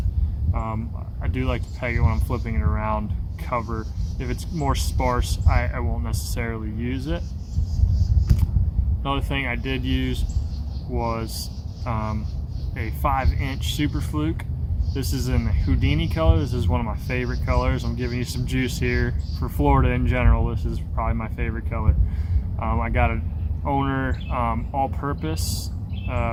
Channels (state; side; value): identical; both; correlation 1.00